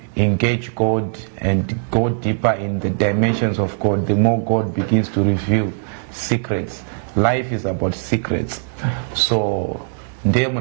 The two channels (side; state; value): left; silent; digital silence